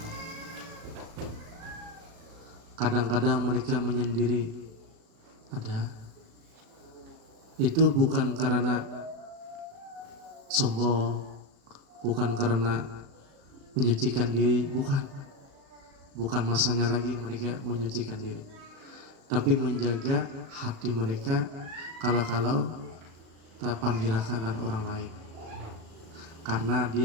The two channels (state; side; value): late; left; 36 ms